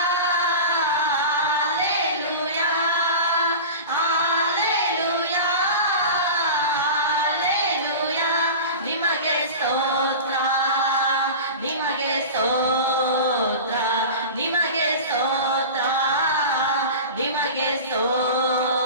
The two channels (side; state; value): both; inverted; correlation -0.31